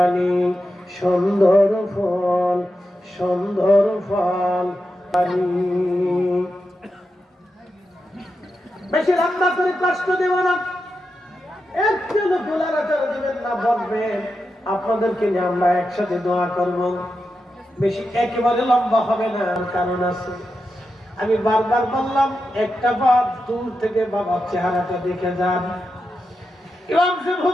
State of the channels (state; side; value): normal; both; correlation 0.89